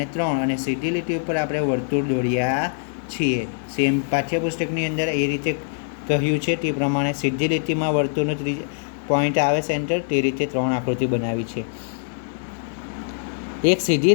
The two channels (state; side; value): silent; right; digital silence